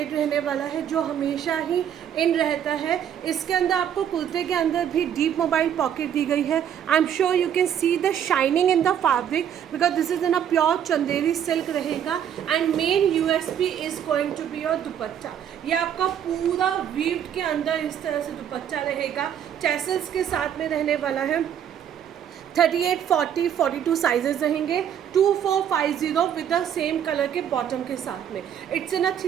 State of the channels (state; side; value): quieter; left; 9.3 dB